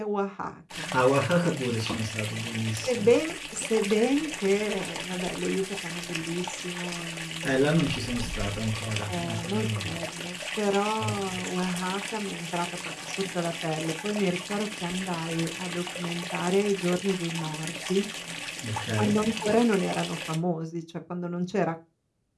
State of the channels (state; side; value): identical; both; correlation 1.00